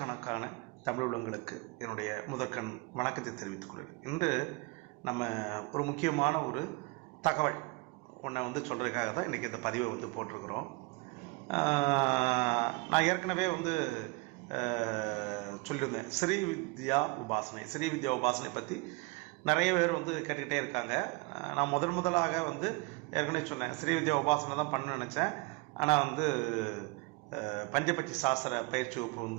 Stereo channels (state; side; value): quieter; left; 24.9 dB